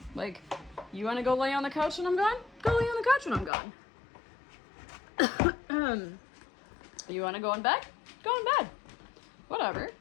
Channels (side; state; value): right; drops out; at 3.5 s